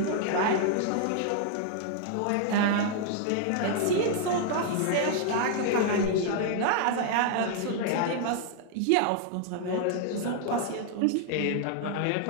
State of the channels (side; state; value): both; different; correlation 0.00